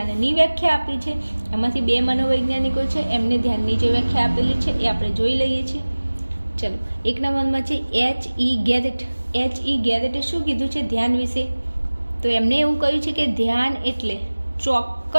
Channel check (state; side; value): inverted; both; correlation -1.00